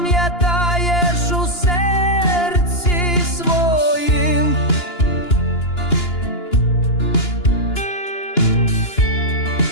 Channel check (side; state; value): right; late; 2.9 ms